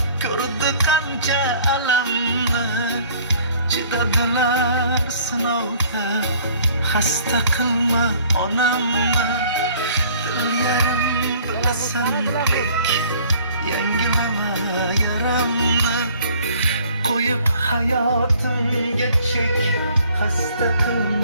ko'rdi qancha alamni. Chidadilar sinovga, xasta qilma onamni. Dil yarim bilasan lek, yangilama yaramni. Qo'yib hayotimga chek, xasta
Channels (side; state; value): both; inverted; correlation -0.55